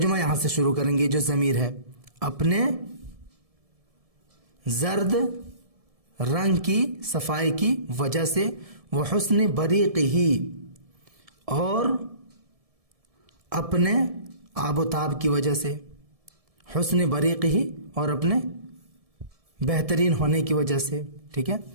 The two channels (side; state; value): left; late; 1.7 ms